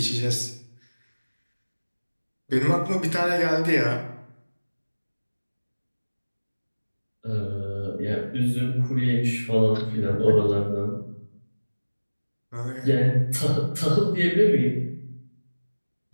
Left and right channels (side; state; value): both; inverted; correlation -1.00